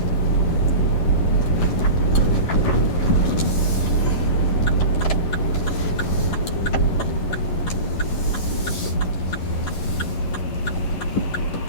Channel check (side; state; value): right; late; 11 ms